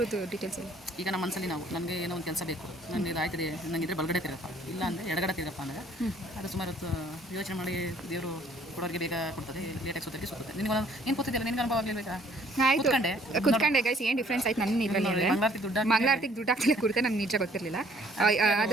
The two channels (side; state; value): both; normal; correlation 0.60